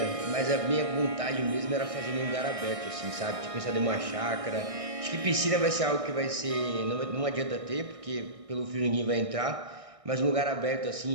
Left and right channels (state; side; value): late; left; 1.6 ms